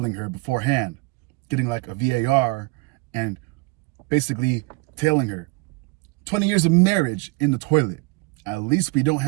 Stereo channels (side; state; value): left; quieter; 25.2 dB